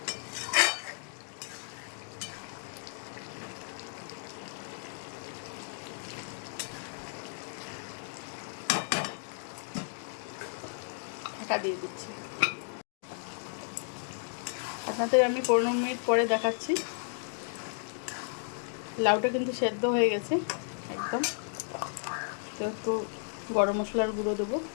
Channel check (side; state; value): right; silent; digital silence